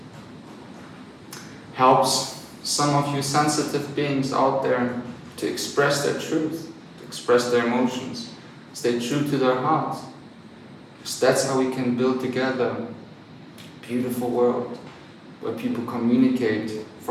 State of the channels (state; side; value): identical; both; correlation 1.00